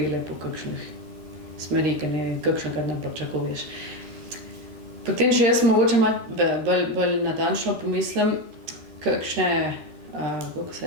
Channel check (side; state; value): left; late; 13 ms